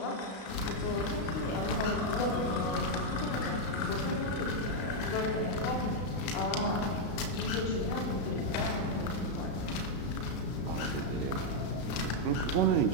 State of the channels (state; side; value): late; right; 33 ms